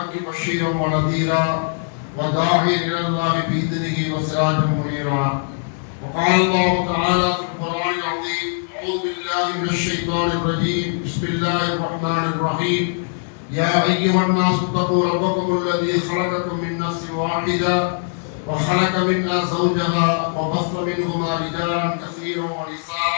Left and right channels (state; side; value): silent; right; 65 dB below the other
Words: بشيرا ونذيرا وداعيا إلى الله بإذنه وسراجا منيرا وقال الله تعالى في القرآن العظيم أعوذ بالله من الشيطان الرجيم بسم الله الرحمن الرحيم يا أيها الناس اتقوا ربكم الذي خلقكم من نفس واحدة وخلق منها زوجها وبث منهما رجالا كثيرا